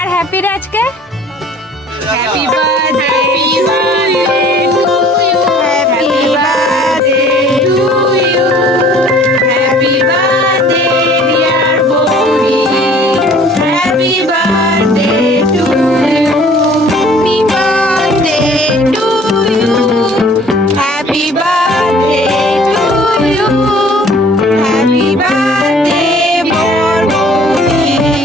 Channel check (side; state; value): both; normal; correlation 0.52